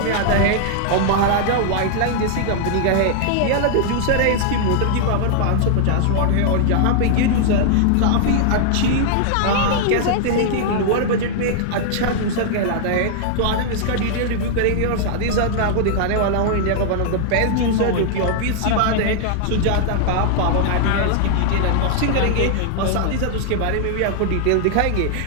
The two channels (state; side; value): different; both; correlation -0.01